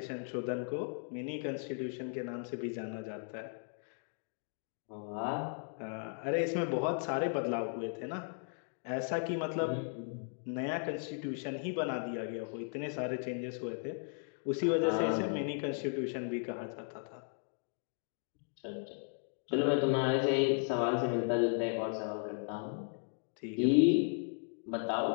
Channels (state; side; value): silent; right; 54 dB below the other